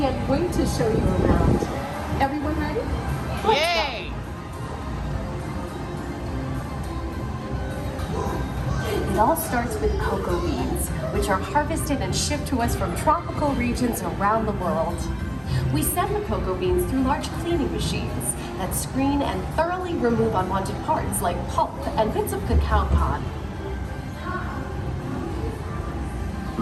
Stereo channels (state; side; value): identical; both; correlation 1.00